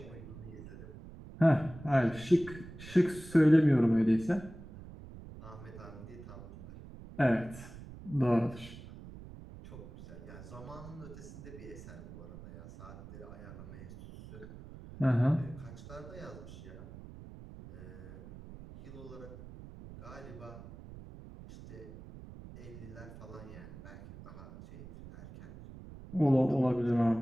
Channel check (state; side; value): noise; right; rumble, 15 dB below the sound